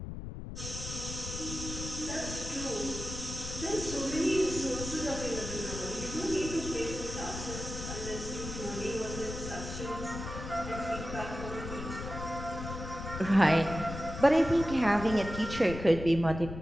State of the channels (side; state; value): left; noise; rumble, 8 dB below the sound